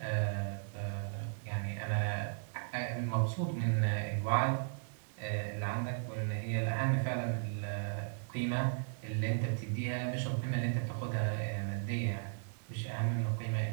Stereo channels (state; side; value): silent; left; 54 dB below the other